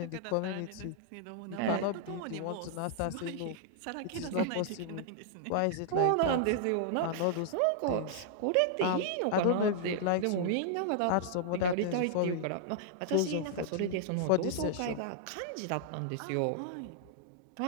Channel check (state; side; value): different; both; correlation -0.01